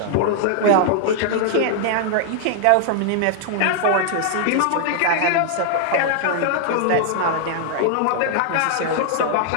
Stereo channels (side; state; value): both; different; correlation 0.00